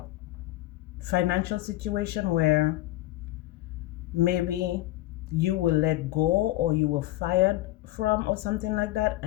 financial situation where maybe you were let go, or you were fired from, or something like that,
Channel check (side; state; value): right; quieter; 16.5 dB